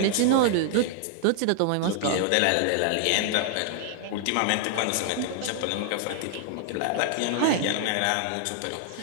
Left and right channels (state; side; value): different; both; correlation 0.00